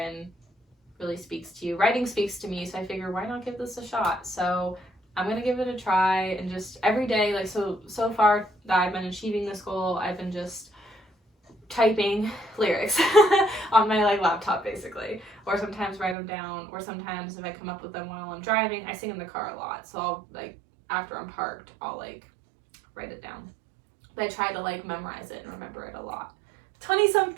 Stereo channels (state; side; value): drops out; left; at 16.2 s